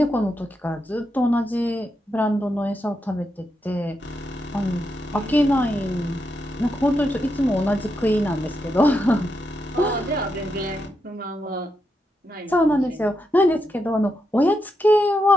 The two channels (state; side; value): normal; both; correlation 0.83